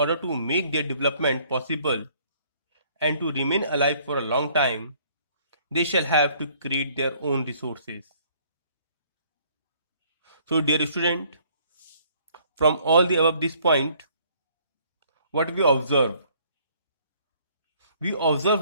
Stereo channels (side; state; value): both; inverted; correlation -0.61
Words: to make their development possible and to remain alive for a long time, they shall have to create their own resources. So, dear student, from all the above this point, what we observe? We